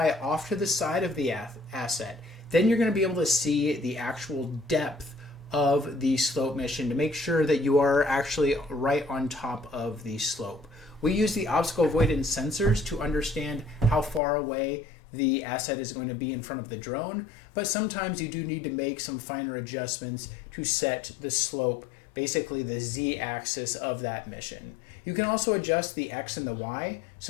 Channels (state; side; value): drops out; right; at 14.2 s